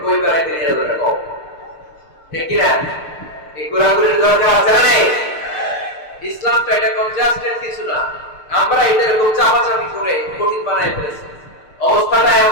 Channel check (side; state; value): right; late; 6.6 ms